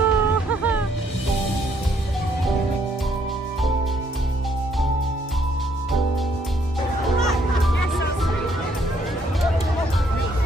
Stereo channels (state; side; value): normal; both; correlation 0.69